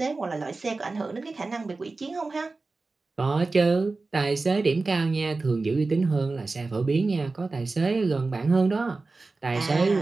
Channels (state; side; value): quieter; left; 3.6 dB